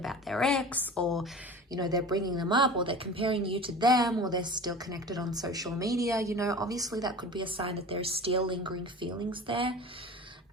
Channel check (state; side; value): normal; both; correlation 0.37